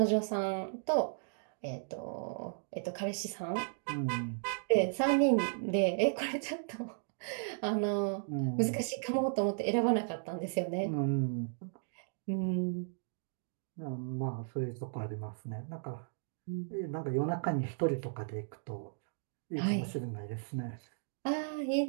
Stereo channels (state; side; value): silent; left; digital silence